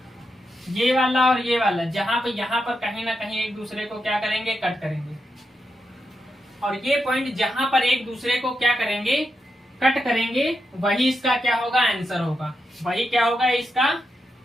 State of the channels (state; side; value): normal; both; correlation 0.86